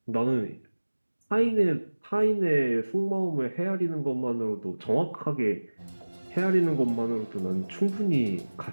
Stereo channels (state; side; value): inverted; both; correlation -1.00